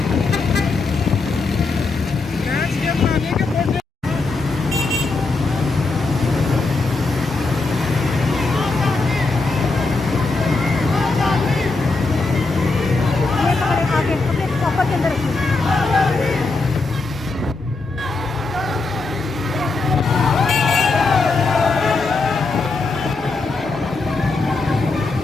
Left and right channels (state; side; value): quieter; right; 3.7 dB